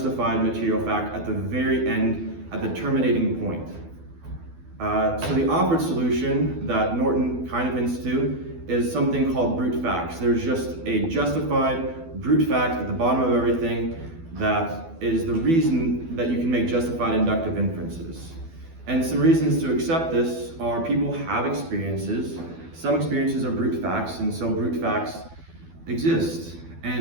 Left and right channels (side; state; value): left; late; 12 ms